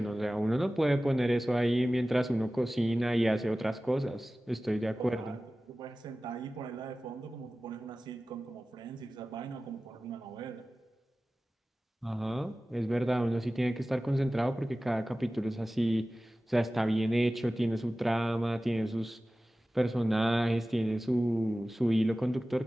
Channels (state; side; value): normal; both; correlation 0.96